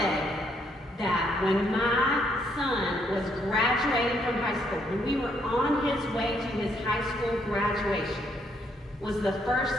say that when my son was graduating from high school, when we were on his way to his high school graduation, was the first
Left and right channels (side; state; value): both; normal; correlation 0.72